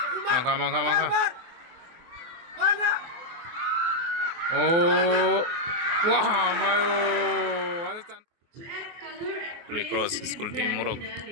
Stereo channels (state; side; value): late; left; 24 ms